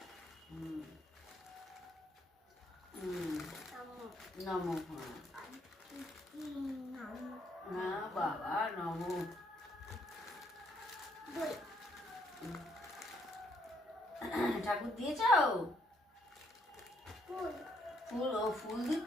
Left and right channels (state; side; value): normal; both; correlation 0.72